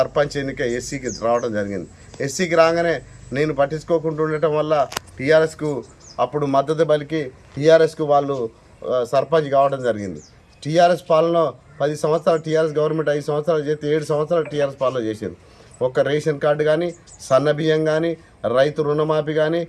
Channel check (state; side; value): identical; both; correlation 1.00